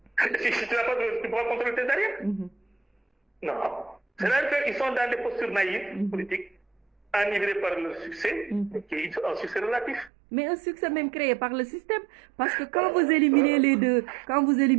tu n'as pas de, tu pourras contrôler tes arrières. Non. C'est-à-dire qu'ils sont dans des postures naïves, politiques, enivrés par le succès, qui est un succès relatif. Mais un succès même créé par le système, parce que quand vous éliminez les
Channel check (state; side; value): drops out; left; at 10.1 s